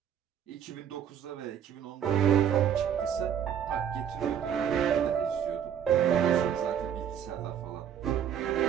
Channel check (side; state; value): left; quieter; 9.0 dB